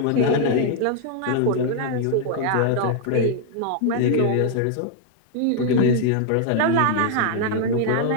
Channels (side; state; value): both; different; correlation 0.00